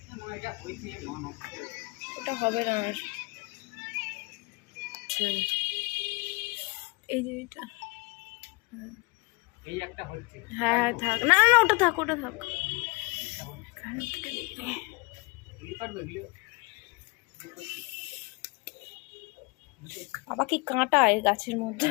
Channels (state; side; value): quieter; right; 27.0 dB